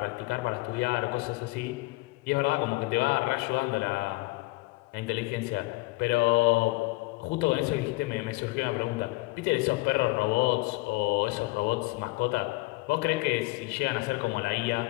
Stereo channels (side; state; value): right; quieter; 22.6 dB